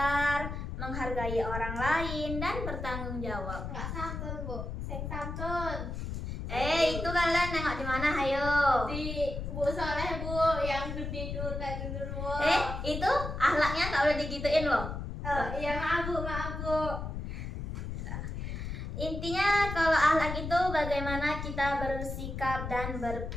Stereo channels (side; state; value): left; noise; rumble, 5 dB below the sound